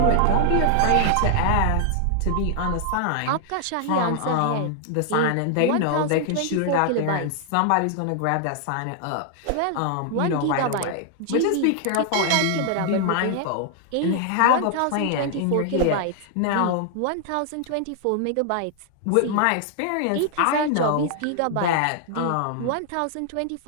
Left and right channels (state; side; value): different; both; correlation 0.00